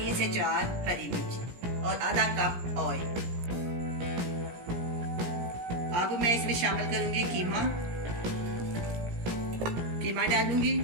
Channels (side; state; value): left; late; 17 ms